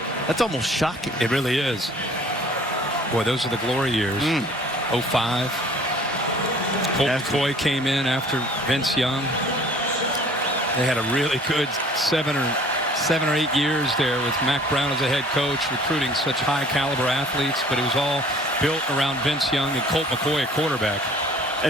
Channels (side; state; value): both; normal; correlation 0.52